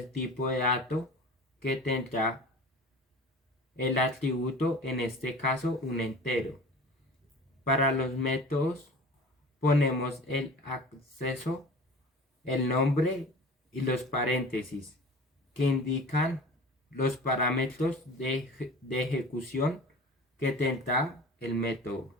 tipo de dato que tendrá el atributo, en este caso un entero. Para los métodos ponemos el acceso, el nombre y los paréntesis que indican los parámetros de ejecución que tendrá el método.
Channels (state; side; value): normal; both; correlation 0.39